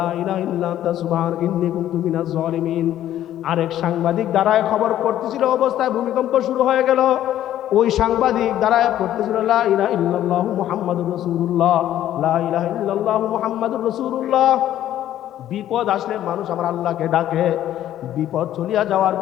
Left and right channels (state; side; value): quieter; right; 12.2 dB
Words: ইলাহা ইল্লা আনতা সুবহানাকা ইন্নী কুনতু মিনাজ জালিমিন। আরেক সাংবাদিক দাঁড়ায় খবর করতেছিল, অবস্থায় ভূমিকম্প শুরু হয়ে গেল, ওই সাংবাদিক দাঁড়ায় পড়তেছিল লা ইলাহা ইল্লাল্লাহু মুহাম্মাদুর রাসূলুল্লাহ, লা ইলাহা ইল্লাল্লাহু মুহাম্মাদুর রাসূলুল্লাহ। বিপদ আসলে মানুষ আমার আল্লাহকে ডাকে, বিপদ চলিয়া যাওয়ার